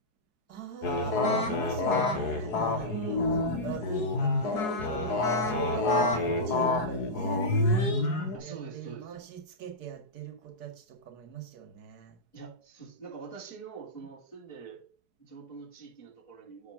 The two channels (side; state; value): right; late; 4.7 ms